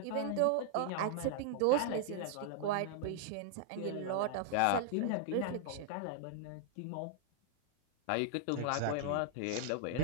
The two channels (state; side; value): different; both; correlation 0.00